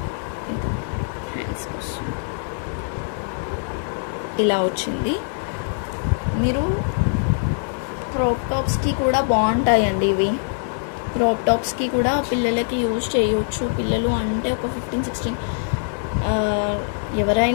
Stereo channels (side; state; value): right; silent; digital silence